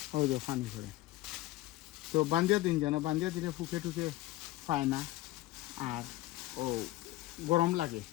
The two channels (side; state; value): right; quieter; 16.9 dB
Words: ওই তো পানি করে। তো বান্ধিয়া দিন যেন বান্ধিয়া দিলে ফুকে টুকে পায় না আর ও গরম লাগে।